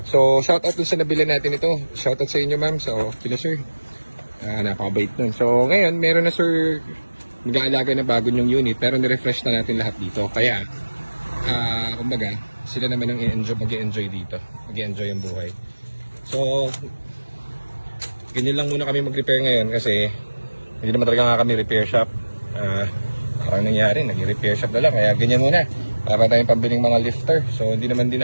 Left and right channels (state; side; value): inverted; both; correlation -1.00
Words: So, shoutout dun sa nabili natin ito. Shoutout sa inyo, ma'am. So, kila sir. Napakabait nun. So, ngayon, meron na sir mag-aalaga na bago yung unit, pero nirefresh na natin lahat dito. Kaya, kumbaga, sila naman ang mag-i-enjoy dito. Mag-i-enjoy yung buhay. So, ganyan lang muna kami mag-repair ngayon kasi hindi naman talaga nga kami repair shop. Parang nangyari, nag-repair shop na lang. Kaya ganyan muna. Para tayong pambiling mga lifter. So hindi naman